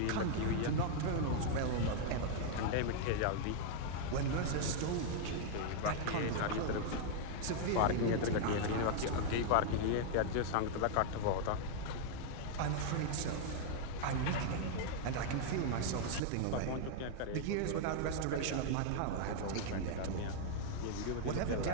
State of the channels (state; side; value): different; both; correlation -0.01